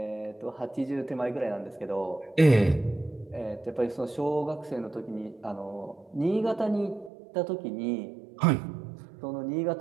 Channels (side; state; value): left; drops out; at 7.1 s